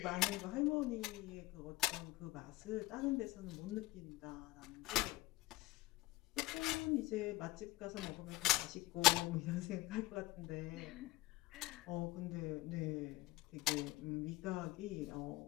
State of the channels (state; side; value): quieter; right; 19.2 dB